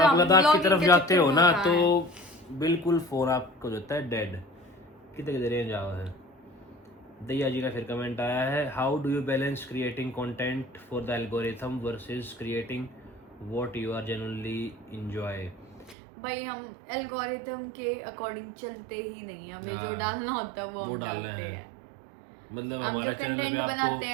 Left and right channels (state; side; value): drops out; left; at 16.0 s